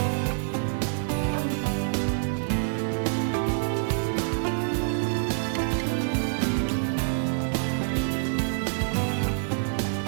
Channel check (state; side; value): silent; left; 60 dB below the other